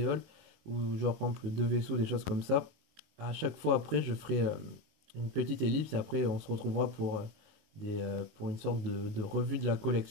halls, ou genre par exemple deux vaisseaux, des choses comme ça, à chaque fois après, je ferai une petite ellipse et après on se retrouvera pour une sorte de revue de la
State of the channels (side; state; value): left; late; 19 ms